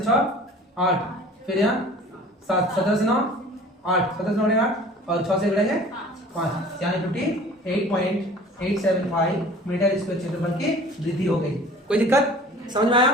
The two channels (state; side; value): normal; both; correlation 0.46